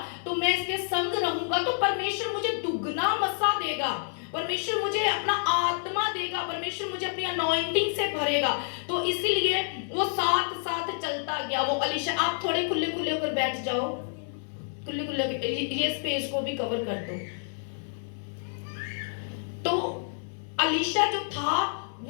तो मैं इसके संग रहूंगा तो परमेश्वर मुझे दुगना मसा देगा, परमेश्वर मुझे अपना आत्मा देगा, परमेश्वर मुझे अपनी अनॉइंटिंग से भरेगा। तो इसीलिए वो साथ साथ चलता गया। वो अलीशा, आप थोड़े खुले खुले होकर बैठ जाओ, खुले खुले, ये स्पेस को भी कवर कर दो। तो अलीशा जो था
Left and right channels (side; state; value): right; silent; 59 dB below the other